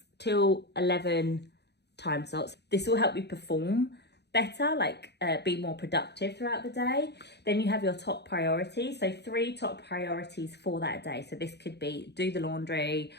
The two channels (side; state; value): right; late; 0.49 ms